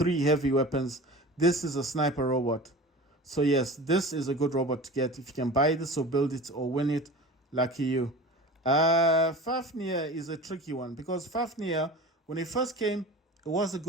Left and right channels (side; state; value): both; normal; correlation 0.36